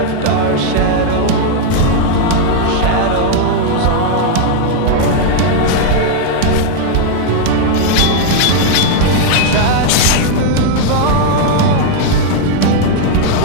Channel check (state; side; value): different; both; correlation 0.00